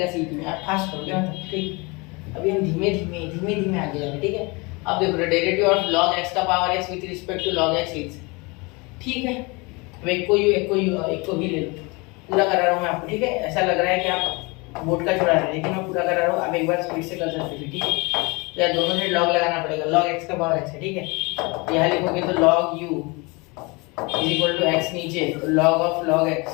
सीटी में, आप फास्ट करोगे मतलब, ठीक। अभी हम धीमे धीमे आगे जाएंगे, ठीक है। अब देखो डेरिवेटिव ऑफ log x का power x with respect to log x is, ठीक है। अब एक को भी ले लो, पूरा करा रहा हूँ मैं आपको, ठीक है। ऐसा लग रहा है कि आप बोर्ड का छोड़ा रहे हैं, लेकिन मैं पूरा करा रहा हूँ, आप एक बार स्पीड से कर सकते हो, ठीक है। तो यार दोनों से log लगाना पड़ेगा, log x का पावर x है, ठीक है। यहाँ लिखोगे तो log u is equal to x नीचे, तो log ऑफ log x,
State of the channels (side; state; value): right; quieter; 27.4 dB